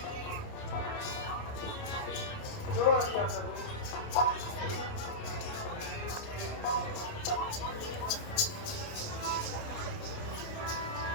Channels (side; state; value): right; late; 28 ms